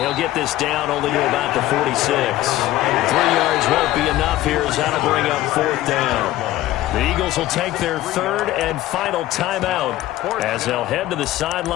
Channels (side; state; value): right; quieter; 15.2 dB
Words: he'll get this down only to about the 46. 3 yards won't be enough here as that'll bring up 4th down. The Eagles will take their 3rd and final timeout as they'll head to the